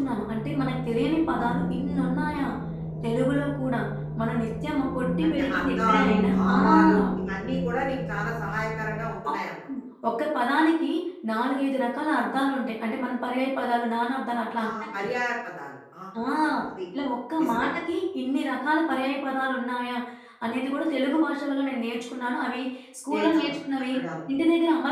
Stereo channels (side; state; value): both; identical; correlation 1.00